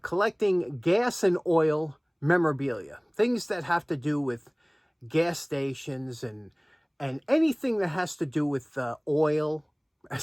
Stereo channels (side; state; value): both; identical; correlation 1.00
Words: collecting gas and oil memorabilia, things that have to do with gas stations and anything that has to do with oil,